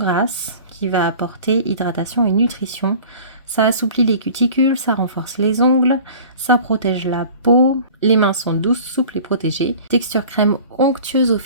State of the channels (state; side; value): inverted; both; correlation -0.44